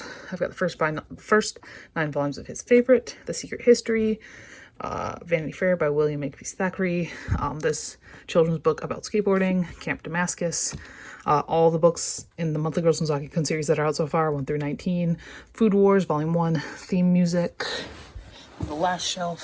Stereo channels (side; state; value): both; identical; correlation 1.00